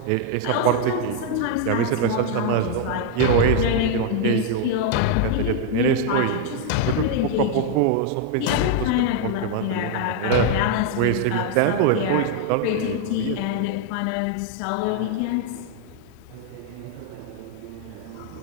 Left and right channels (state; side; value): different; both; correlation 0.00